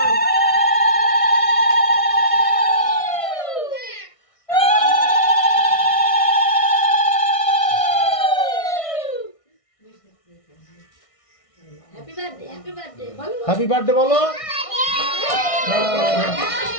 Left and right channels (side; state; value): right; late; 1.6 ms